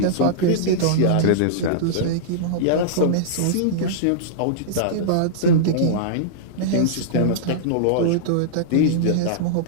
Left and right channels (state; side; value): different; both; correlation -0.02